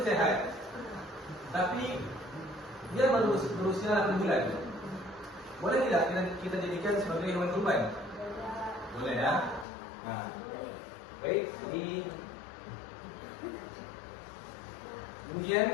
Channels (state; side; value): drops out; right; at 9.7 s